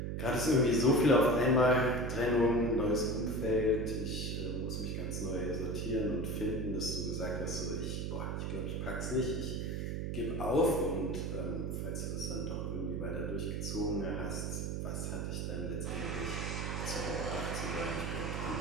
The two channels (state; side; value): noise; right; hum, 2 dB below the sound